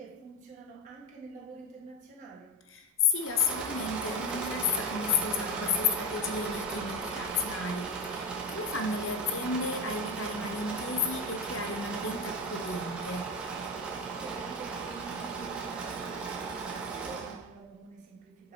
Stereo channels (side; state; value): both; normal; correlation 0.16